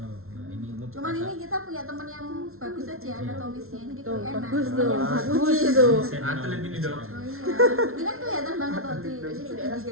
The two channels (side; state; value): left; late; 0.62 ms